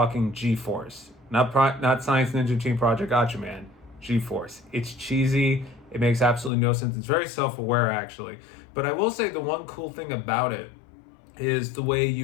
G-Force, not Science Ninja Team Project Gatchaman, G-Force. It's cheesy. It makes absolutely no sense. It's very self-aware actually. But I will say the one cool thing about it is the way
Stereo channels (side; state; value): right; drops out; at 6.5 s